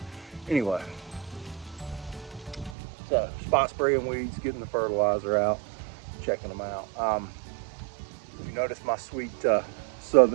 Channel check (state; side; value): drops out; left; at 2.8 s